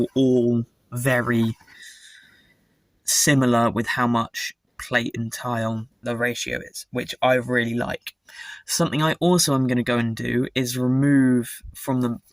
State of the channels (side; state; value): both; identical; correlation 1.00